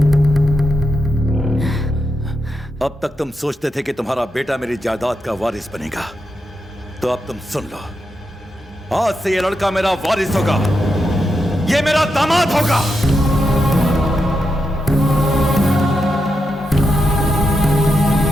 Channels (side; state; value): both; normal; correlation 0.85